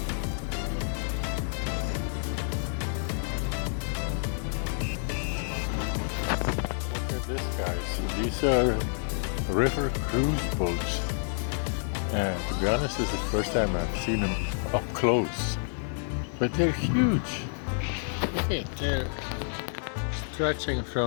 at this, guys. These are river cruise boats. And to be honest, this is the first time I've seen them up close. But they're huge. Look at, they're stretching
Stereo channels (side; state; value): right; silent; digital silence